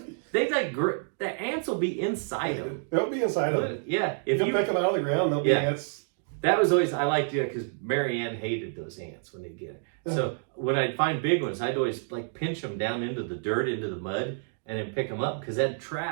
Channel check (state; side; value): silent; left; digital silence